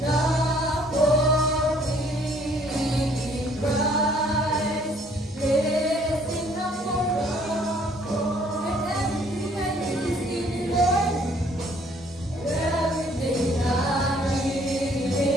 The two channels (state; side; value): normal; both; correlation 0.61